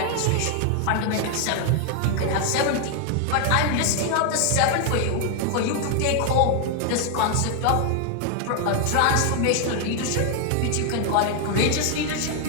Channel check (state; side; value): different; both; correlation 0.00